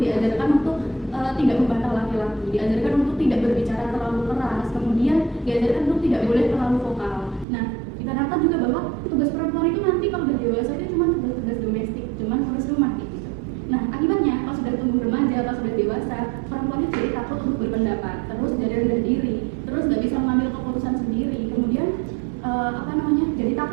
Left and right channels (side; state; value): left; drops out; at 7.5 s